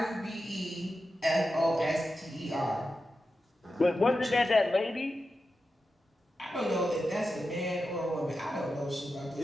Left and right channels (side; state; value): both; normal; correlation 0.90